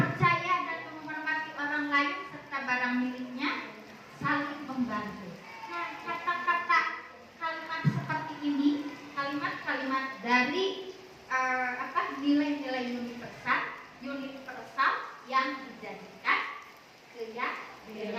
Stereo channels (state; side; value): identical; both; correlation 1.00